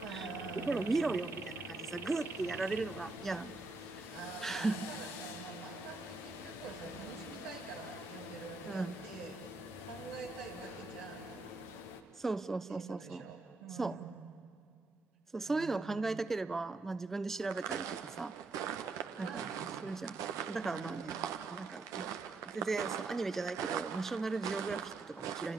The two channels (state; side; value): quieter; left; 3.4 dB